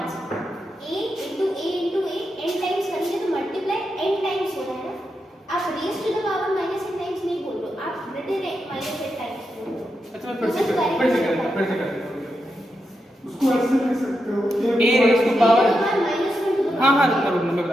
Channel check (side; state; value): both; normal; correlation 0.86